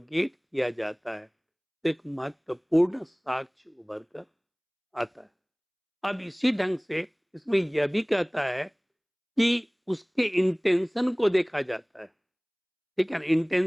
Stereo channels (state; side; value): identical; both; correlation 1.00